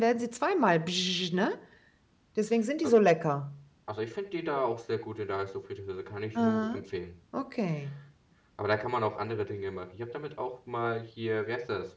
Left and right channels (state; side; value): identical; both; correlation 1.00